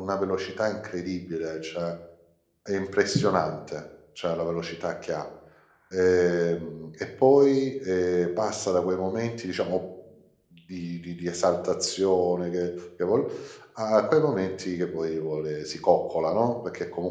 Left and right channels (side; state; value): both; identical; correlation 1.00